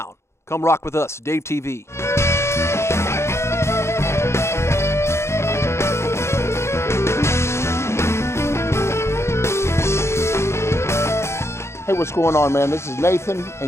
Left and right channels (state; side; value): late; right; 0.13 ms